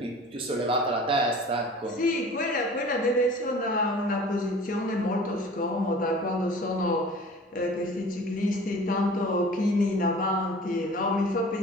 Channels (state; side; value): normal; both; correlation 0.44